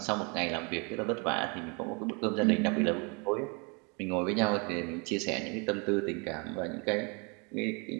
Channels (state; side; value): quieter; left; 32.4 dB